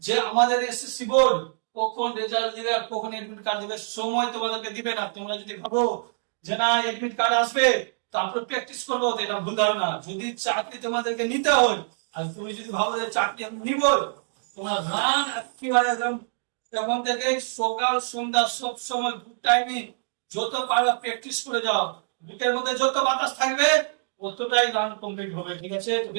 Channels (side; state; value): left; silent; digital silence